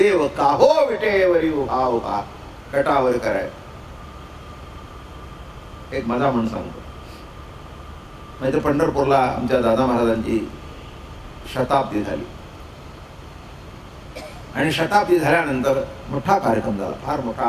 काहो विटेवरी उभा उभा, कटावर कराय. एक मजा म्हणून सांगतो, नाहीतर पंढरपूरला आमच्या दादा महाराजांची शताब्दी झाली. आणि शताब्दी झाल्यानंतर मोठा कार्यक्रम झाला, फार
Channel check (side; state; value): both; identical; correlation 1.00